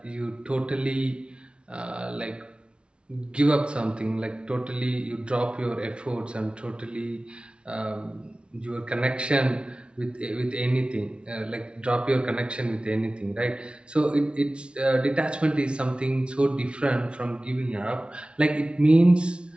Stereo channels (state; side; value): late; left; 0.057 ms